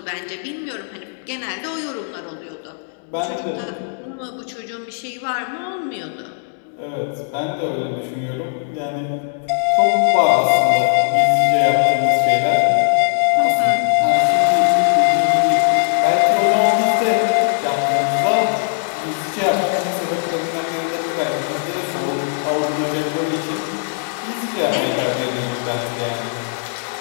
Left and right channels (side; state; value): right; silent; digital silence